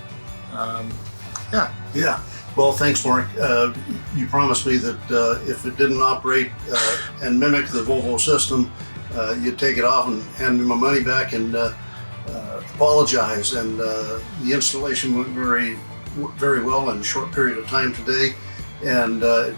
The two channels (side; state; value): both; inverted; correlation -1.00